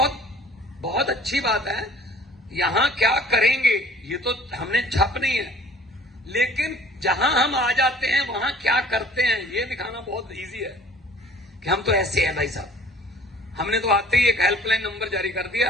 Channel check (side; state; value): both; normal; correlation 0.51